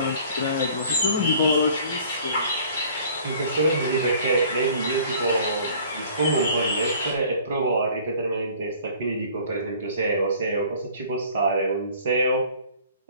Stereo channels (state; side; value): inverted; both; correlation -0.51